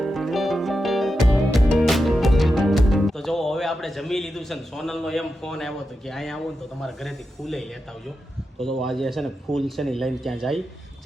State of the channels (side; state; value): both; normal; correlation 0.89